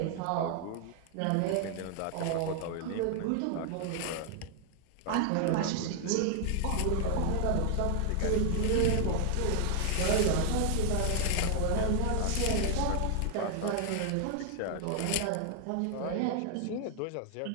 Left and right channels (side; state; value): both; different; correlation 0.00